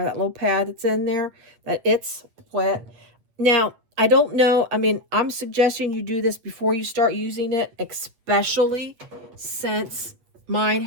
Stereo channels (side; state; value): left; late; 8.5 ms